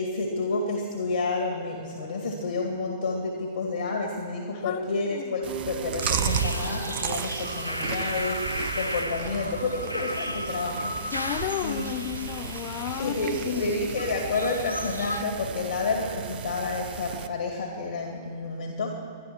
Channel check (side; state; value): both; inverted; correlation -0.51